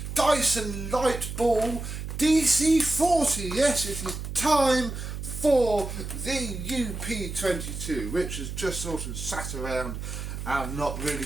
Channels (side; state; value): right; noise; hum, 7 dB below the sound